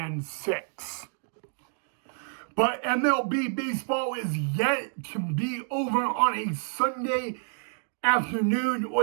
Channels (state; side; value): silent; left; 59 dB below the other